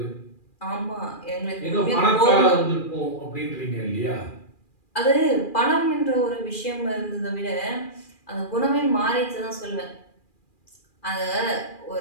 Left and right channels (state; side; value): late; right; 2.4 ms